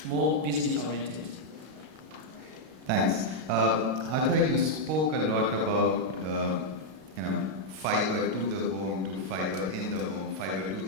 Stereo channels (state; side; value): late; left; 32 ms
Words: more business oriented. Thanks. Arthur, you spoke a lot about fiber to the home, to fiber in the home, fiber to